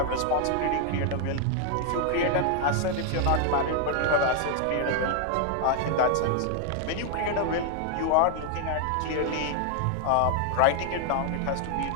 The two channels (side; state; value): both; different; correlation 0.00